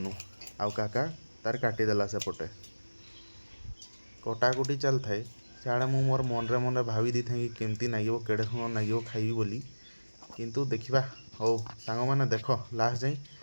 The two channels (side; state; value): both; inverted; correlation -1.00